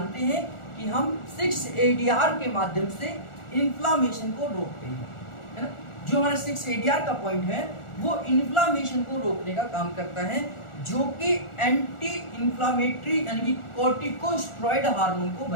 हैं कि हम 6-ADR के माध्यम से इंफ्लेमेशन को रोकते हैं, है ना। जो हमारा 6-ADR का पॉइंट है वो इंफ्लेमेशन को रोकने का काम करता है, जो कि एंटी इंफ्लेमेटरी यानी कि कॉर्टिकोस्टेरॉइड हार्मोन को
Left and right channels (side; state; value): right; late; 1.4 ms